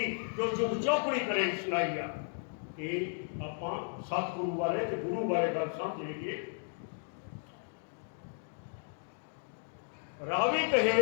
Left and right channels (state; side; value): silent; right; digital silence